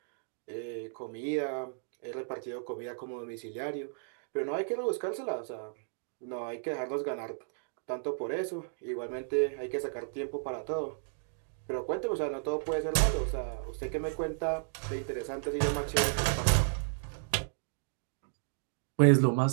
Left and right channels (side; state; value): left; silent; digital silence